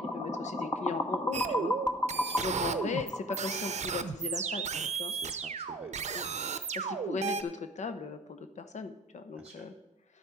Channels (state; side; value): normal; both; correlation 0.45